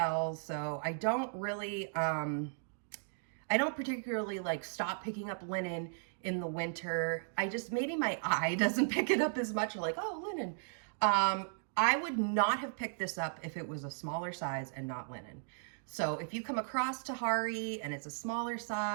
so I don't particularly like stop picking up linen in the winter. Maybe my eye doesn't pick it up as much, or like, oh, linen. I would not have picked this up if it was a smaller size and not linen. So if you come across Tahari and it's a smaller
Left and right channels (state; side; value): silent; left; digital silence